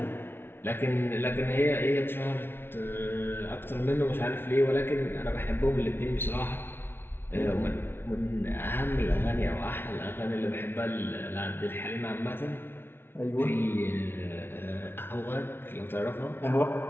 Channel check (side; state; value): right; late; 0.11 ms